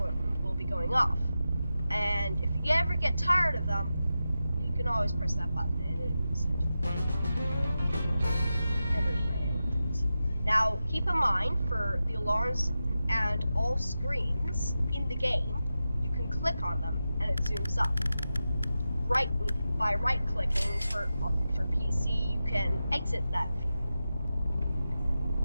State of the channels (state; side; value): inverted; both; correlation -0.92